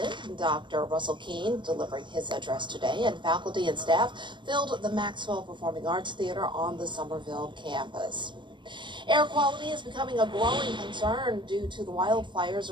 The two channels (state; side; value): late; left; 0.23 ms